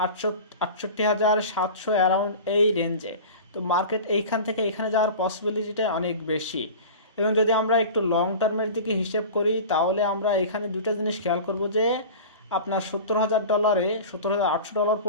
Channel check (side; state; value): both; inverted; correlation -0.35